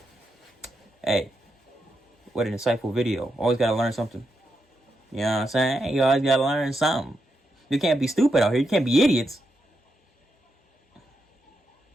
Hey, what an insightful video. Always gotta learn something. You know what I'm saying? You always gotta learn something. You can't be stupid out here. You can't be idiots.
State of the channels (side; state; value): both; normal; correlation 0.84